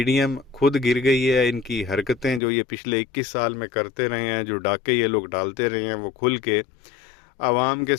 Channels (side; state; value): right; drops out; at 2.4 s